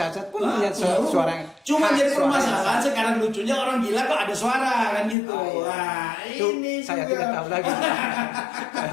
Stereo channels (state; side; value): drops out; right; at 5.2 s